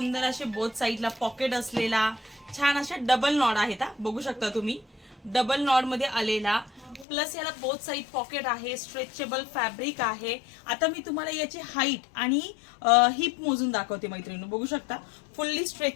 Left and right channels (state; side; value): drops out; right; at 7.1 s